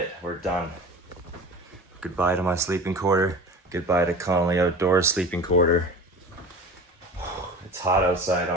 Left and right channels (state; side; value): normal; both; correlation 0.37